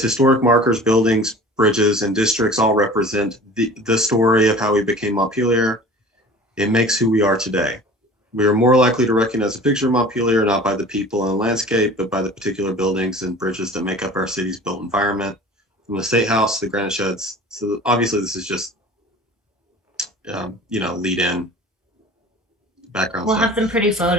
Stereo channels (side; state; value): both; normal; correlation 0.42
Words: historic markers, buildings, bridges, and districts all represent the story of how we became Montpelier. It makes who we are today. We are more likely to recognize a picture of Montpelier not by the people and landscape, but by the particular buildings and bridges that make up our city's built environment, from the State House to the granite sheds. So obviously this is just, lead in background We'll stuff. have some pretty